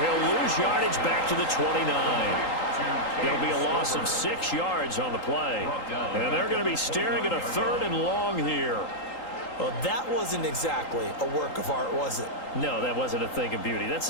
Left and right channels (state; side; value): late; right; 3.8 ms